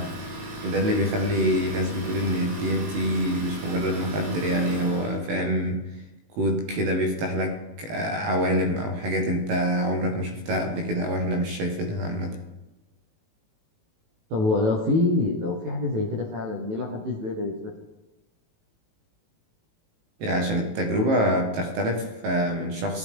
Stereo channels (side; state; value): left; late; 18 ms